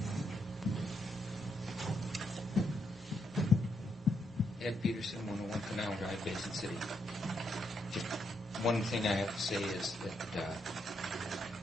Ed Peterson, 101 Canal Drive, Basin City. Just one thing I have to say is that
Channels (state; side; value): normal; both; correlation 0.79